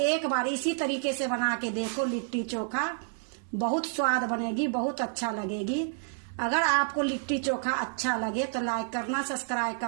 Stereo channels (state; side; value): silent; left; 58 dB below the other